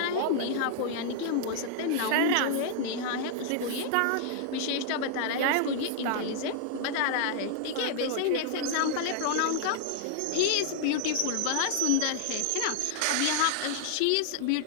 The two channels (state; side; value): different; both; correlation -0.01